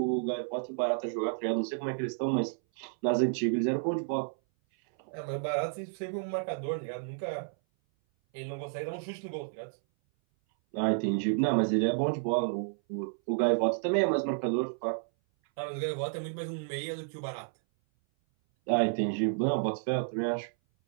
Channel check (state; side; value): silent; left; 57 dB below the other